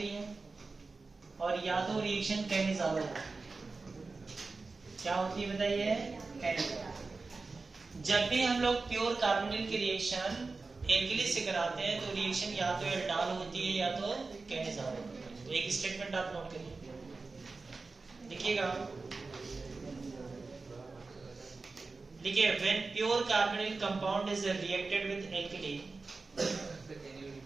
है और या तो रिएक्शन कैनिज़ारो होती है। क्या होती है बताइए? कैनिज़ारो। जब भी हम लोग प्योर कार्बोनिल की रिएक्शन एल्कली से कराते हैं तो रिएक्शन या तो एल्डाल होती है या तो कैनिज़ारो होती है। तो एक स्टेटमेंट आप नोट करिए, लिखिएगा, देखिए when pure carbonyl compound is reacted with alkali,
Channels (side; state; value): left; quieter; 3.9 dB